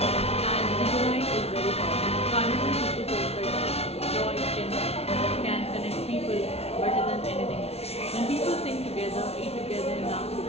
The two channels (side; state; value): right; late; 0.30 ms